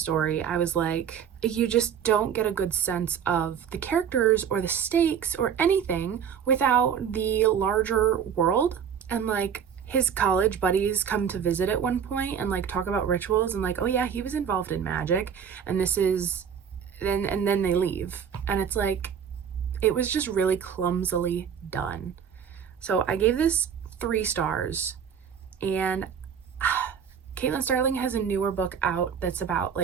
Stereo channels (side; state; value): left; quieter; 7.8 dB